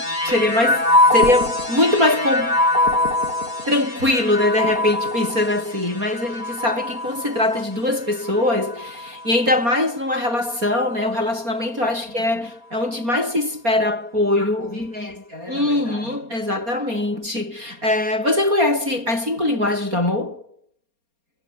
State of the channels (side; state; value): left; late; 4.3 ms